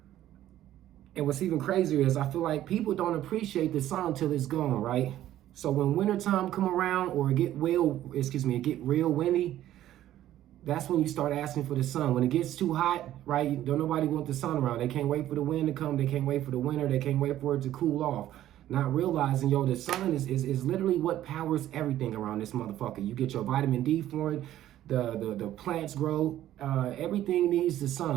And what's even crazier is I feel like people don't appreciate the sun until it's gone, right? So when wintertime come around or it get real windy, that's when you start asking for the sun. When it gets too hot, right? Don't nobody want the sun around. They can't wait for the wind to come. They can't wait for the winter. They can't wait for it to cool off. Not realizing, the sun is literally what powers everything around this motherfucker. You get your vitamin D for it. The plants grow. Everything needs the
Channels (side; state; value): left; quieter; 13.0 dB